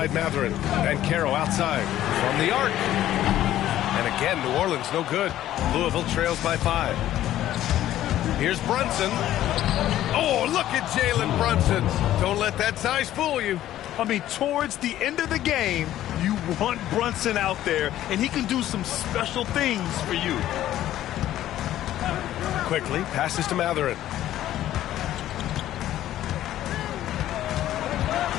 Mathurin. And Carroll outside. From the arc. And again, New Orleans no good. Louisville trails by 5. Here's Brunson. Oh, look at Jalen Brunson. Don't let that size fool you. I mean, towards the end of the game, you want Brunson out there, and he can do some special things for you. Quickly passes to Mathurin.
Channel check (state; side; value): quieter; right; 13.1 dB